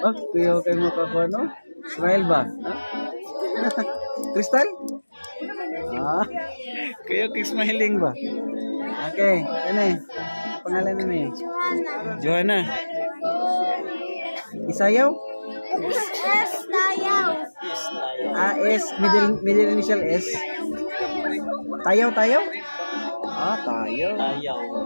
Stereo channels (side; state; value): both; inverted; correlation -1.00